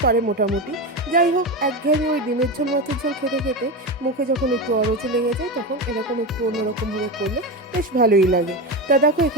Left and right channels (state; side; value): normal; both; correlation 0.18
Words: পারে মোটামুটি। যাই হোক, একঘেয়েমি ওই ডিমের ঝোল মাছের ঝোল খেতে খেতে মুখে যখন একটু অরুচি লেগে যায়, তখন এরকম একটু অন্যরকমভাবে করলে বেশ ভালোই লাগে। তা দেখো,